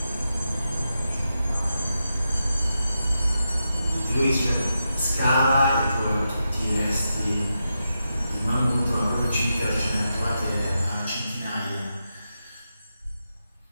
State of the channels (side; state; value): both; inverted; correlation -0.87